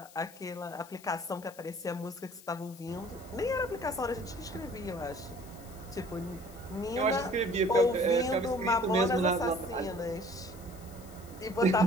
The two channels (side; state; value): left; noise; hiss, 21 dB below the sound